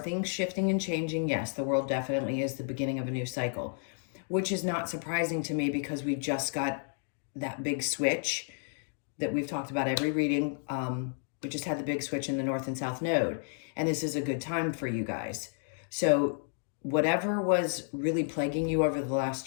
shifting and changing? Yes, the World definitely is the beginning of a new cycle, which is not surprising to me because we just got that big switch that we've talked about every reading. We just had the big switch in the North and South Node, and this is a good time for you guys. So whatever was really plaguing you over the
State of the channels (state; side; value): silent; right; 57 dB below the other